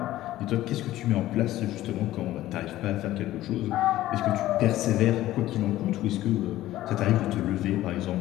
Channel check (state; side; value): quieter; right; 14.9 dB